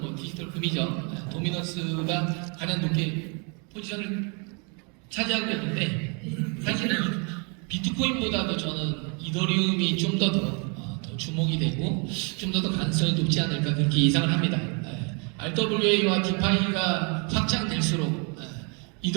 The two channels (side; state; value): left; quieter; 35.5 dB